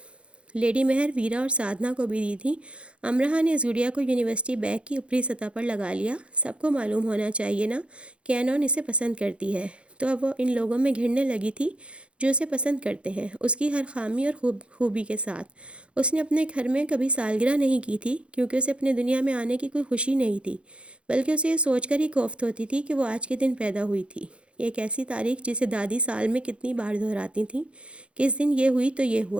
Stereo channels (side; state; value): left; late; 0.059 ms